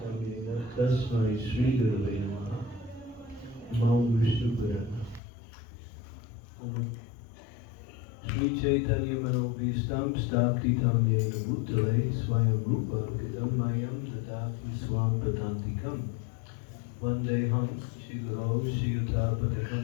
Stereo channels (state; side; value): drops out; right; at 5.2 s